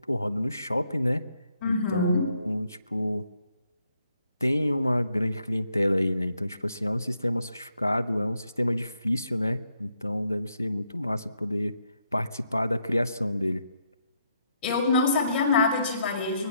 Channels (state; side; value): inverted; both; correlation -0.76